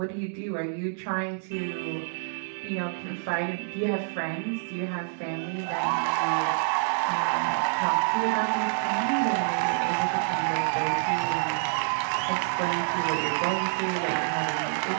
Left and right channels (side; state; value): left; silent; 60 dB below the other